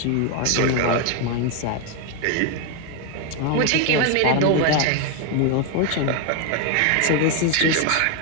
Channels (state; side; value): different; both; correlation 0.01